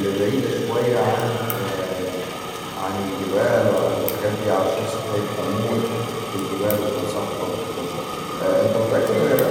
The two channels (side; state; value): both; identical; correlation 1.00